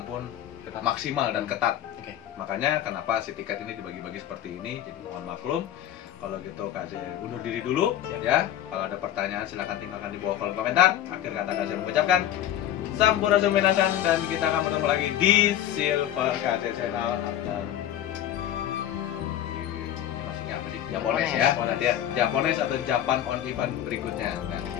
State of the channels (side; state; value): right; quieter; 11.5 dB